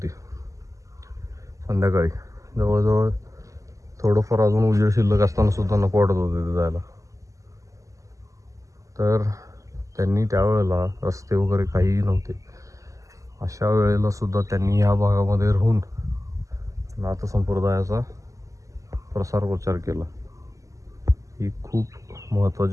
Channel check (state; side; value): late; left; 0.16 ms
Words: संध्याकाळी. जवळजवळ थोडंफार अजून उजेड शिल्लक असताना सुद्धा नको वाटत होतं तिथं जायला. तर त्यांनी त्यावेळेला रस्ते वगैरे काहीही नव्हते, अशा वेळेला सुद्धा त्यांनी ह्या भागामध्ये राहून नाथ संप्रदायाचा प्रसार प्रचार केला. ही खूप